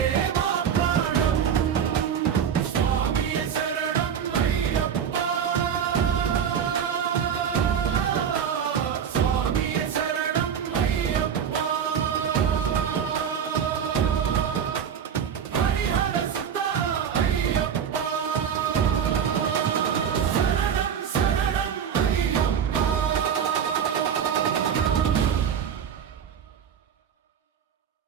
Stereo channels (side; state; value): left; quieter; 8.0 dB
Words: మా ప్రాణం స్వామియే శరణం అయ్యప్ప స్వామియే శరణం అయ్యప్ప హరిహర సుత అయ్యప్ప శరణం శరణం అయ్యప్ప